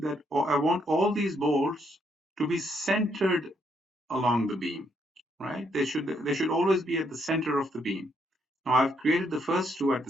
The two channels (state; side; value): normal; both; correlation 0.73